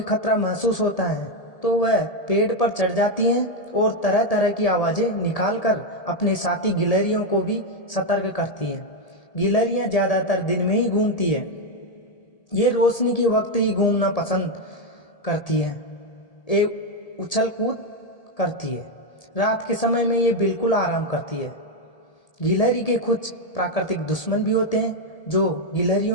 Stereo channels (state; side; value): late; right; 1.7 ms